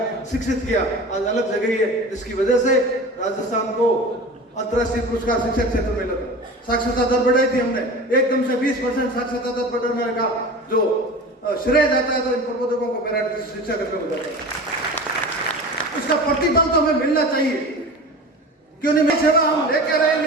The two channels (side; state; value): both; normal; correlation 0.34